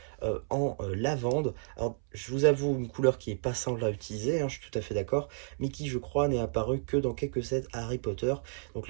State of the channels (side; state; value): left; silent; 57 dB below the other